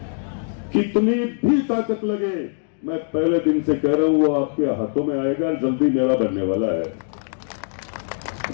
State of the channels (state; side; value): silent; right; digital silence